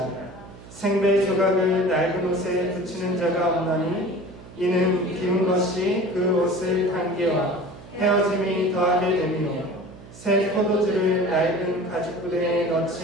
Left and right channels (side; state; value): right; noise; hum, 18 dB below the sound